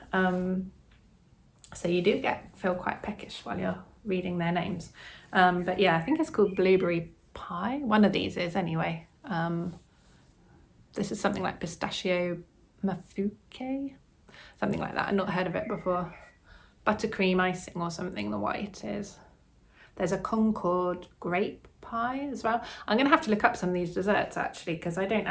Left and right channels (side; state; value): both; identical; correlation 1.00